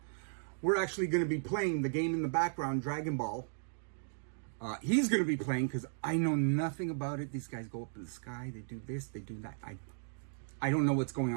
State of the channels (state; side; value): silent; left; digital silence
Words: We're actually going to be playing the game in the background, Dragonball. He's going to be playing because I know nothing about it. These guys go up in the sky. They do this. They do that. I don't know what's going